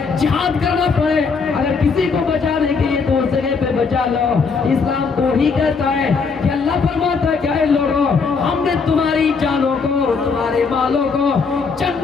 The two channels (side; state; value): right; quieter; 5.0 dB